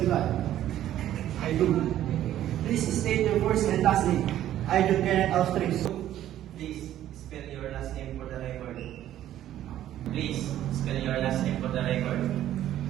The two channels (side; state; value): left; quieter; 12.3 dB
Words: God? I do. Please state your first and last name. I, John Kenneth Astris. Please spell your last name for the record. Please spell your last name for the record.